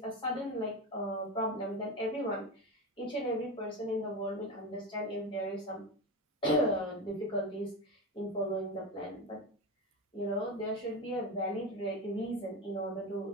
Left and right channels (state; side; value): normal; both; correlation 0.21